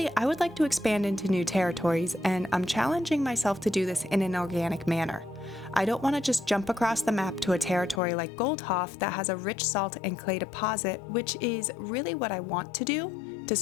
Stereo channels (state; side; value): drops out; right; at 8.0 s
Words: I would like to expand into new territories, and I'm challenging myself to do this in an organic manner. I don't want to just jump across the map to a territory like Goldhoff that has a rich salt and clay deposit, which is really what I want to do, to